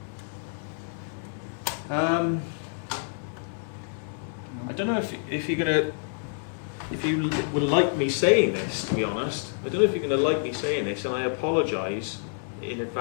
I don't know if you're gonna, if you would like me saying this, to be honest. I don't know if you're going to like me saying this, and I apologise in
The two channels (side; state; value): right; silent; digital silence